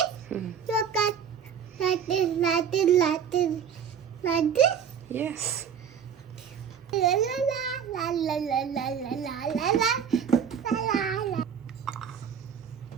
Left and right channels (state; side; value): quieter; left; 7.6 dB